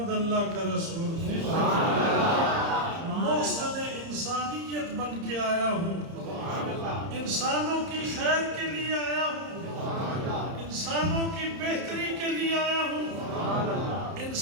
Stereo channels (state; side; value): late; left; 30 ms